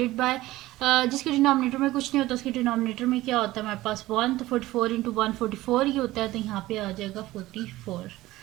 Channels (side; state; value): left; quieter; 17.2 dB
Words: बाय जिसके डिनोमिनेटर में कुछ नहीं होता उसके डिनोमिनेटर में क्या होता है हमारे पास 1, तो 44 इंटू 144 ही होता है, तो यहाँ पे आ जाएगा 44।